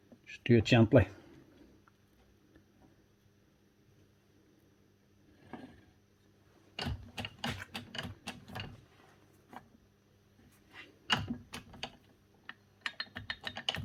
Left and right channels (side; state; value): both; identical; correlation 1.00